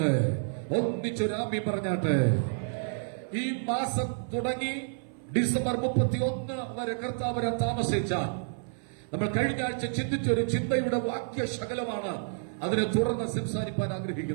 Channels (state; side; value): silent; left; 55 dB below the other